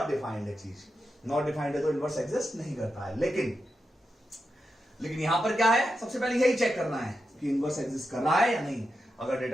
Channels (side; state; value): both; normal; correlation 0.88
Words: डिफाइंड है चीज. नॉट डिफाइंड है तो इनवर्स एग्जिस्ट नहीं करता है. लेकिन यहां पर क्या है? सबसे पहले यही चेक करना है कि इनवर्स एग्जिस्ट कर रहा है या नहीं. अगर